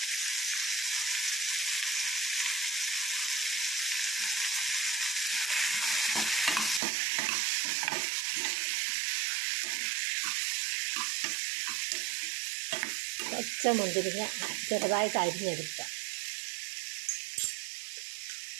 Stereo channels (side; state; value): left; drops out; at 6.8 s